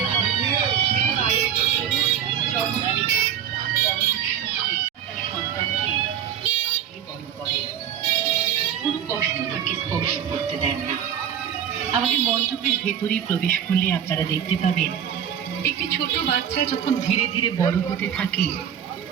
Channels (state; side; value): quieter; left; 9.2 dB